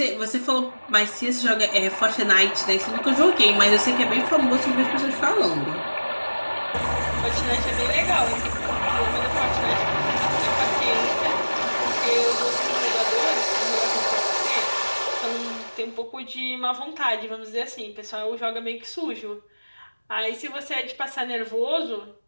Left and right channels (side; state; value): both; inverted; correlation -1.00